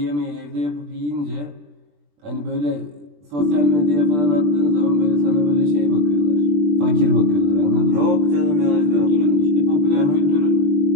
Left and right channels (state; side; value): late; left; 20 ms